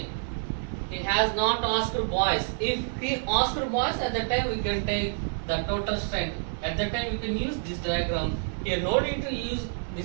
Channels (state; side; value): silent; left; digital silence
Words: He has not asked boys. If he asked boys, at that time we can take the total strength. At that time we can use this diagram. Here no need to use